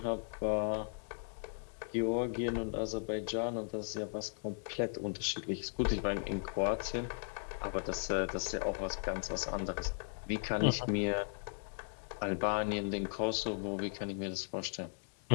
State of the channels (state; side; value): silent; right; 53 dB below the other